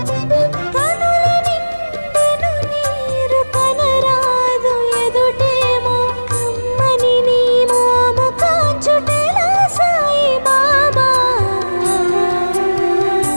కనుల నిండెను నీరు కనరాదు ఎదుటేమో. కమ్మని నీ మోము కాంచుటెలా సాయి బాబా.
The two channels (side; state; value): both; inverted; correlation -1.00